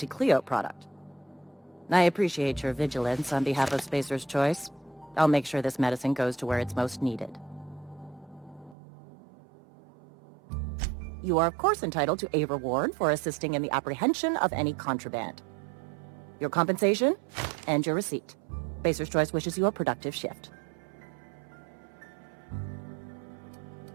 product. I appreciate your vigilance on behalf of Spacer's Choice. I'll make sure this medicine goes to where it's most needed. You are of course entitled to a reward for assisting in the apprehension of any contraband. Your compensation and your receipt. Spacer's Choice wishes you a productive shift.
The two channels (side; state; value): left; drops out; at 8.8 s